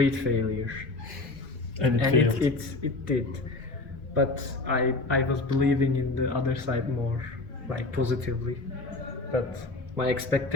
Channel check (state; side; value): quieter; right; 3.2 dB